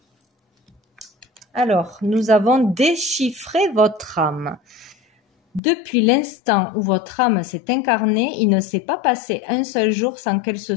Alors, nous avons déchiffré votre âme. Depuis l'instant où votre âme s'est incarnée, il ne s'est pas passé un seul jour sans qu'elle se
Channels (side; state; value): right; drops out; at 5.6 s